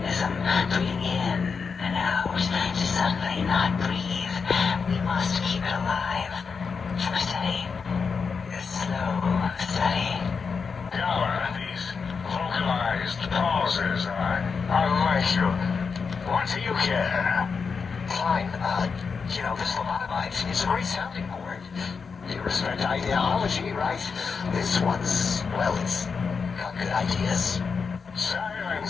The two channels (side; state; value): right; quieter; 5.4 dB